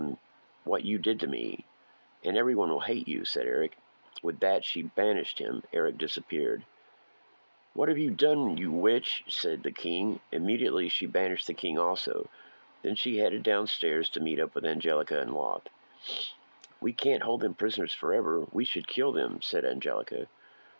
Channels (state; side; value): inverted; both; correlation -1.00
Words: what you did to me, and everyone will hate you," said Eric. With that, she banished him. Eric disappeared. "What have you done, you witch?" said the king. Immediately, she banished the king also. Then she headed downstairs to meet up with Angelica and Loth. "We can't hold them prisoners forever. We should kill them," said Angelica.